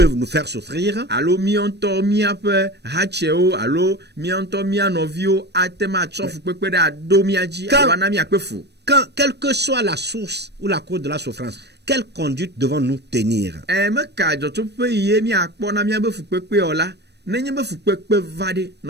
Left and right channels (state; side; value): late; left; 0.49 ms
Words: nous faire souffrir, alo mianto mia pe hacheo alo mianto mia novio atema tsofu pepe da do miaji Quand- alo na mia pefu. quand, quelle que soit la source ou la cause de la souffrance, quelle conduite devons-nous tenir? Me ka joto pe ye mi akpo na mia befu pepe ola nenye befu pepe vade